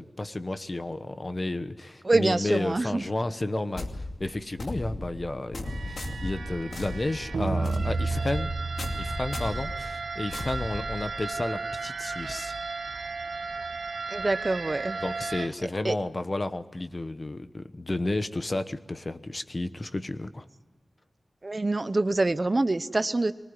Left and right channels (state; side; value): normal; both; correlation 0.96